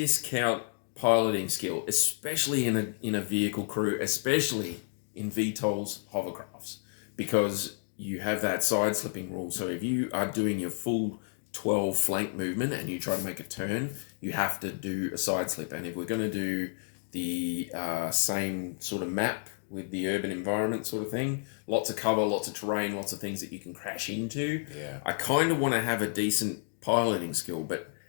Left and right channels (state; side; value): silent; right; digital silence